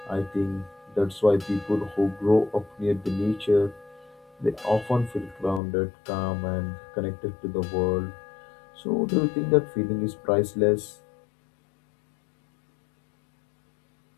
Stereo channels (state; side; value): drops out; right; at 5.6 s